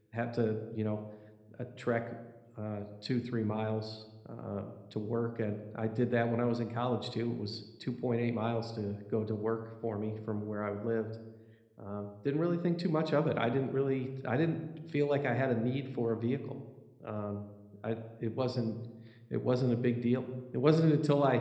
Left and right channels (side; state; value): both; identical; correlation 1.00